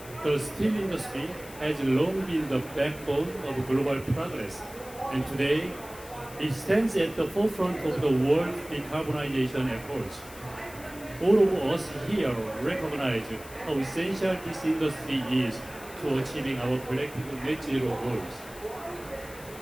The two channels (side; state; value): left; noise; hiss, 18 dB below the sound